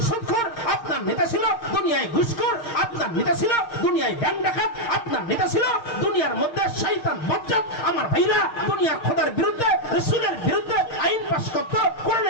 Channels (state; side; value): late; right; 6.5 ms